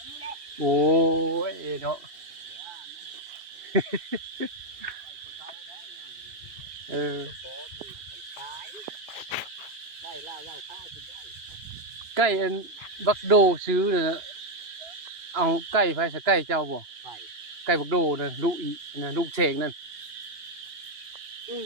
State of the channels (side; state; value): left; late; 2.9 ms